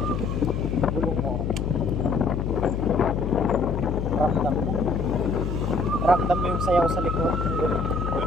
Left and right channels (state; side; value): noise; left; hum, 2 dB below the sound